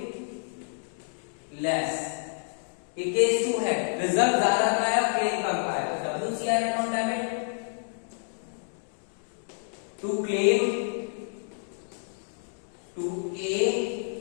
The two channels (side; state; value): right; silent; digital silence